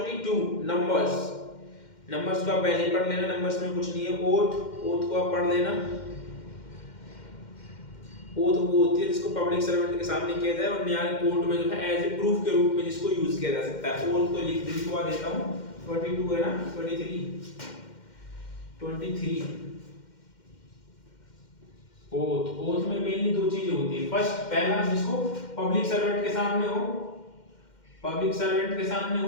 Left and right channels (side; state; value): right; late; 2.1 ms